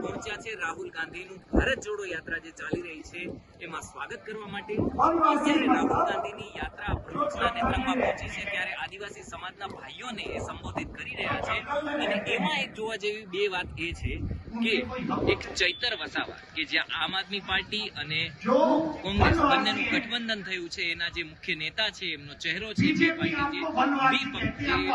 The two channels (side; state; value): both; identical; correlation 1.00